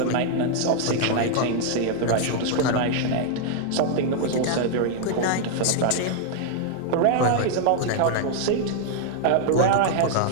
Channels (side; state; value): both; different; correlation 0.00